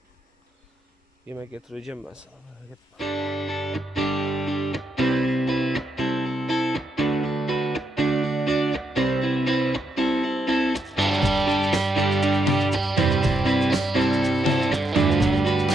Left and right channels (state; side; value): normal; both; correlation 0.81